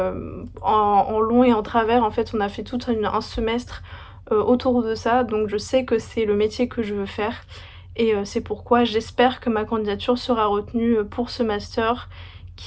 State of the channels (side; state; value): both; identical; correlation 1.00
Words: en long et en travers. En fait, on a fait tout un semestre, autour de ça, donc je sais que c'est le métier que je veux faire et c'est pourquoi j'espère que ma candidature sera retenue, pour ce master